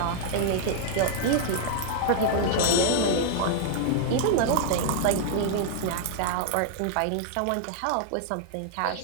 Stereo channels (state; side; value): different; both; correlation -0.01